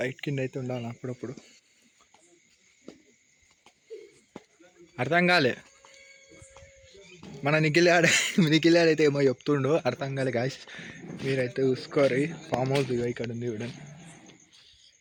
కింద అయితే ఉండాలి అప్పుడప్పుడు. అర్థం కాలే, మన నిఖిల్ అయితే ఏమో చెప్తుండో అర్థం కాలే గాయస్. మీరైతే చూసుకోరు. ఫామ్ హౌస్ ఇక ఇక్కడ ఉంది చూడండి.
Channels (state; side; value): identical; both; correlation 1.00